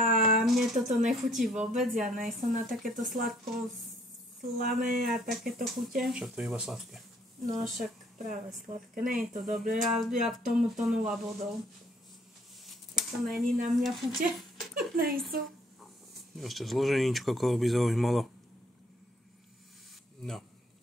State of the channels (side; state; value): both; normal; correlation 0.63